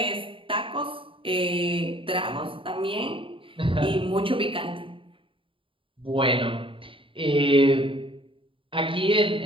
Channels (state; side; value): late; left; 0.25 ms